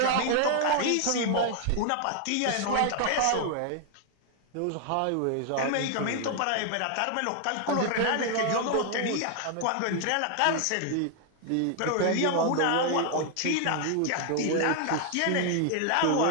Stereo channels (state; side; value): different; both; correlation 0.00